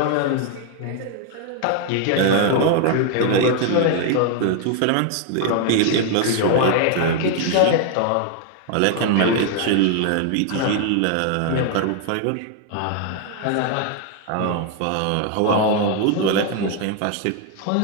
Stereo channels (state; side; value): different; both; correlation 0.00